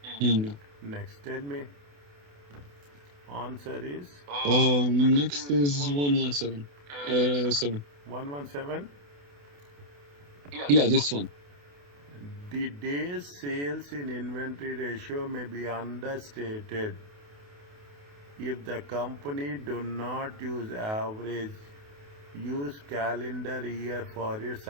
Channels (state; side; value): late; left; 28 ms